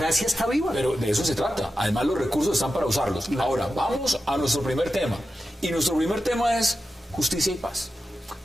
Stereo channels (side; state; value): both; normal; correlation 0.91